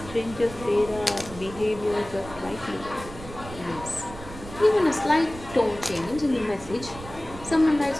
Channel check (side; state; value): right; noise; rumble, 14 dB below the sound